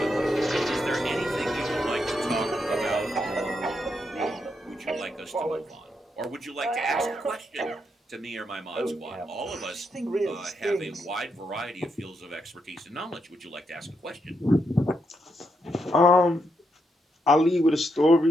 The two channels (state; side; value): normal; both; correlation 0.81